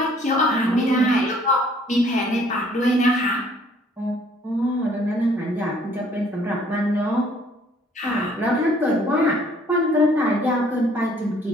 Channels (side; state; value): both; normal; correlation 0.60